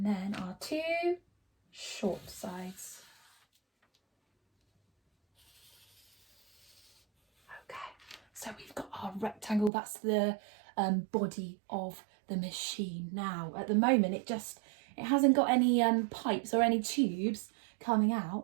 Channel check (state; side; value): drops out; left; at 9.7 s